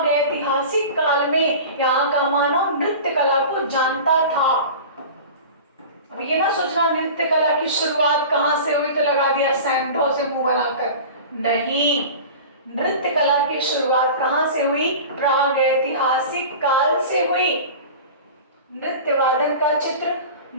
काल में यहाँ का मानव नृत्य कला को जानता था। अब ये ना सोचना नृत्य कला की शुरुआत कहाँ से हुई तो लगा दिया सैंधव से मुंह बनाकर। नहीं, नृत्य कला की शुरुआत कहाँ से हुई? प्रागैतिहासिक काल से हुई। नृत्य वादन का चित्र,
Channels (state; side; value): inverted; both; correlation -0.35